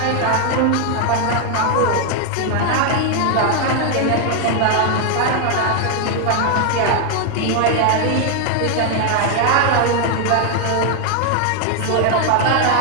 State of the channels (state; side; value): different; both; correlation 0.00